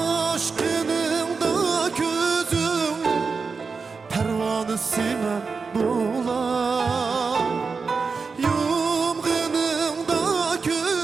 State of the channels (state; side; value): quieter; left; 4.8 dB